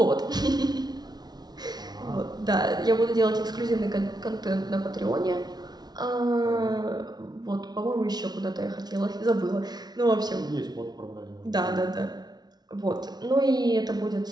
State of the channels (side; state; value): left; late; 0.19 ms